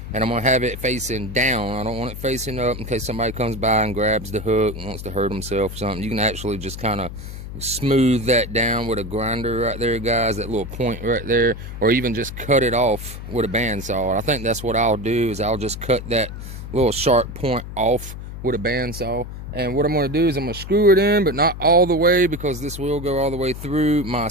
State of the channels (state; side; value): noise; left; hum, 10 dB below the sound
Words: and I'm going to have it facing down. I don't want it facing up in case somebody comes by and grabs the hook and wants to hurt himself or something. You can actually just kind of smooth that down with a grinder right there, guys, that little point right there, or even just cut it off with a bandsaw. I think that's what I'll do, is I'll just cut that little sharp point off with a bandsaw. And what I'm going to do is I'm going to screw it in, but not all the way, because this will go all the way through my